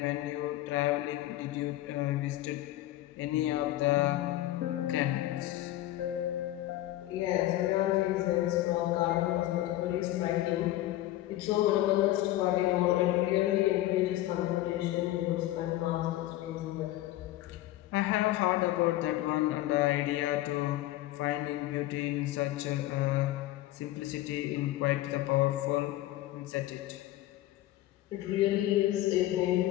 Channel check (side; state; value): right; quieter; 15.2 dB